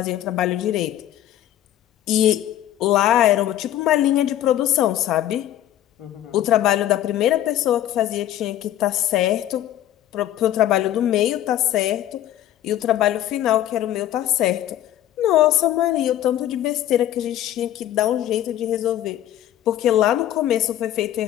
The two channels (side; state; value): right; quieter; 12.4 dB